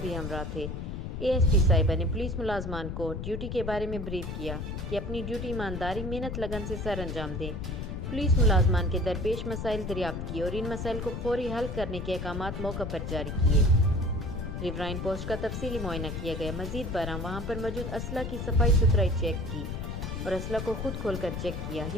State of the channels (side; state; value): left; noise; rumble, 5 dB below the sound